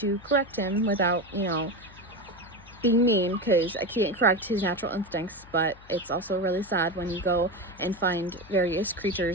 correct him without, you know, being mean, because I can't correct his natural instincts. But it's also really sad when you go and find various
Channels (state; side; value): noise; left; hum, 22 dB below the sound